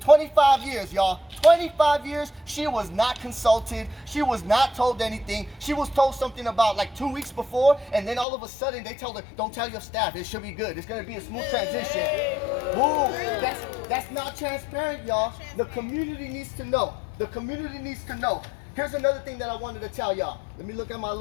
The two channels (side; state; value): right; drops out; at 8.2 s